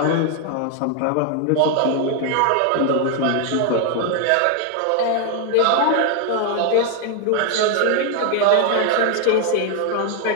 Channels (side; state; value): both; different; correlation 0.01